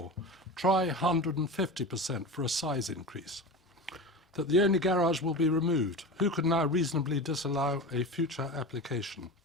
Try 150% for a size increase. That the only garage will be removed. Who could now reasonably disallow a future application?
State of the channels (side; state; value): both; normal; correlation 0.28